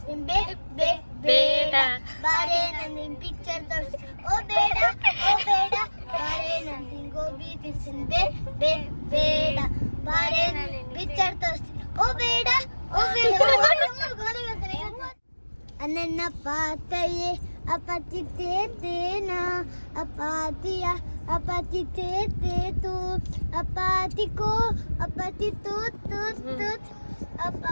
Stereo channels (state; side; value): inverted; both; correlation -1.00